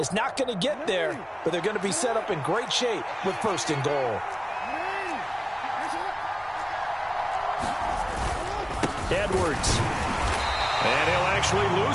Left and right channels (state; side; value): identical; both; correlation 1.00